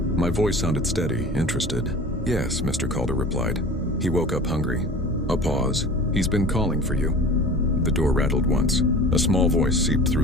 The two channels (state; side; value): normal; both; correlation 0.39